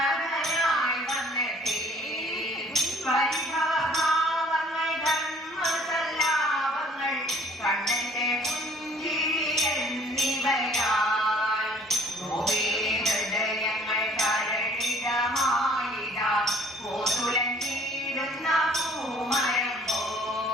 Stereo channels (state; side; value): normal; both; correlation 0.56